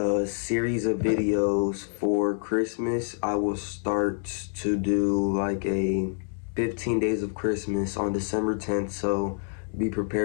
series of videos for Christmas. I will start to do like a 15 days of Christmas on December 10th, so be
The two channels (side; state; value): right; silent; digital silence